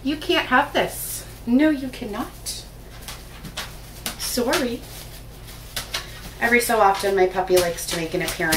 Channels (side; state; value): both; identical; correlation 1.00